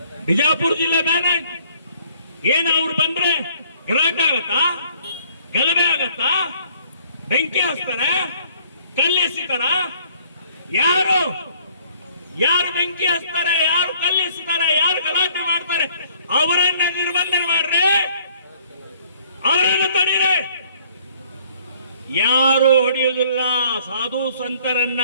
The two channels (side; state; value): both; inverted; correlation -0.59